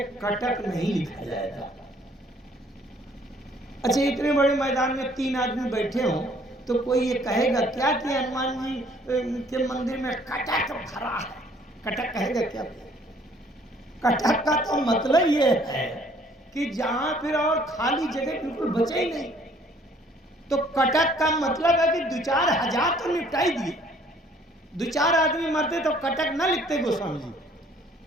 कटक नहीं लिखा जाएगा। अच्छा, इतने बड़े मैदान में 3 आदमी बैठे हों तो कोई ये कहेगा क्या कि हनुमान जी के मंदिर में कटक भरा है? कटक कहेगा क्या? कटक का तो मतलब ये है कि जहां फिर और खाली जगह बिल्कुल बचे ही नहीं। तो कटक का मतलब है कि 2-4 हजार तो निपटाई दिए, 2-4 आदमी मरते तो कटक न लिखते गोस्वामी जी।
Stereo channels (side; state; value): both; normal; correlation 0.60